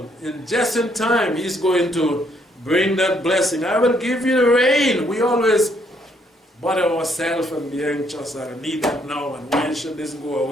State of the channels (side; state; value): both; normal; correlation 0.70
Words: And just in time, He's going to bring that blessing. I will give you the rain. We always bother ourselves and be anxious. I need that now, and when should this go